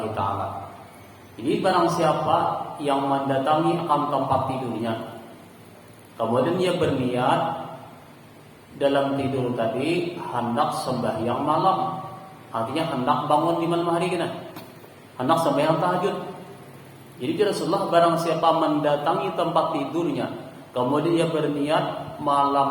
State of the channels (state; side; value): identical; both; correlation 1.00